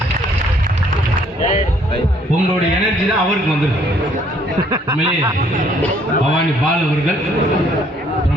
உங்களுடைய எனர்ஜி தான் அவருக்கு வந்துருக்கு. பவானி பால் அவர்கள்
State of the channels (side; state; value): both; normal; correlation 0.63